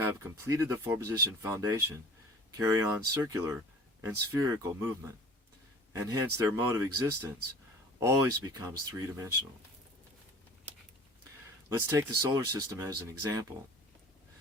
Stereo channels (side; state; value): both; normal; correlation 0.45